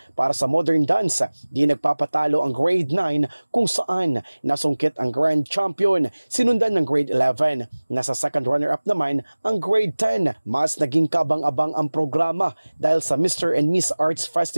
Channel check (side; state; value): both; inverted; correlation -1.00